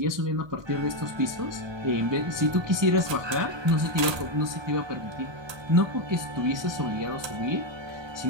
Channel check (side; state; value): left; late; 1.2 ms